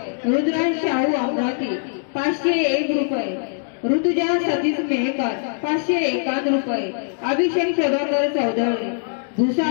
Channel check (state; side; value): silent; right; digital silence